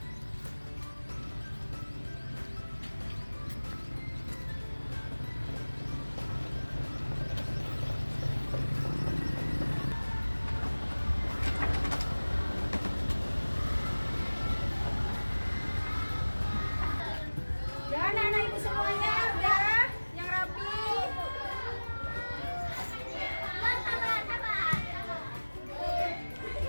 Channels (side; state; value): both; inverted; correlation -1.00